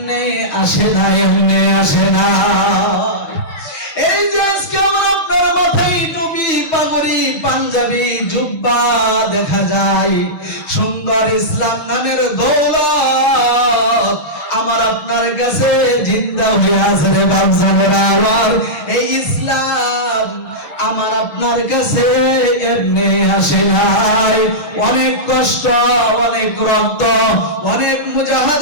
আসে না, এমনি আসে না। এই যে আজকে আমার আপনার মাথায় টুপি, পাগড়ি, পাঞ্জাবি, জুব্বা দেখা যায়, সুন্দর ইসলাম নামের দৌলত আমার আপনার কাছে জিন্দা হয়ে আছে রে বাপজানেরা আমার। এই ইসলাম আমার আপনার কাছে এমনি আসে নাই, অনেক কষ্ট, অনেক রক্ত, অনেক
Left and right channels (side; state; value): right; late; 6.4 ms